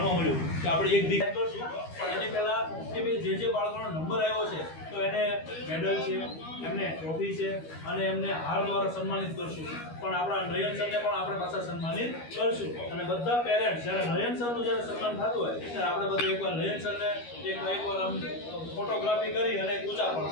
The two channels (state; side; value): late; right; 13 ms